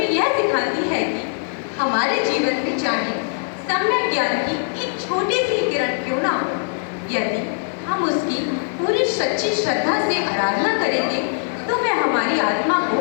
यह सिखाती है कि हमारे जीवन में चाहे सम्यक ज्ञान की एक छोटी सी किरण क्यों ना हो, यदि हम उसकी पूरी सच्ची श्रद्धा से आराधना करेंगे तो वह हमारी आत्मा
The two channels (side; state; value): right; silent; 59 dB below the other